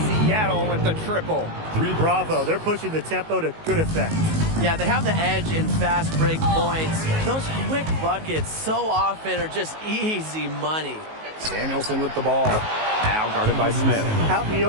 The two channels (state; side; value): late; left; 19 ms